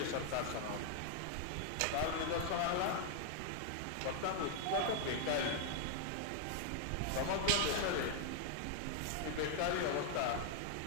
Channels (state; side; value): different; both; correlation 0.00